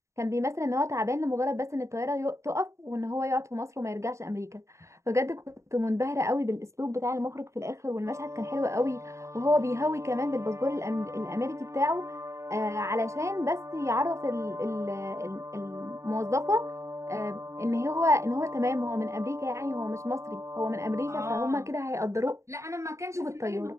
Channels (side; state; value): left; late; 0.14 ms